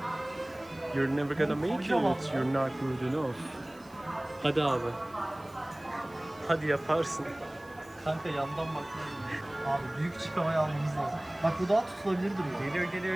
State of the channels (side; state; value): right; noise; hiss, 27 dB below the sound